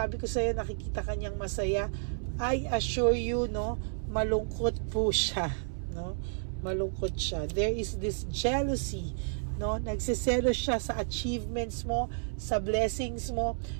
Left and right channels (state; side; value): silent; left; 57 dB below the other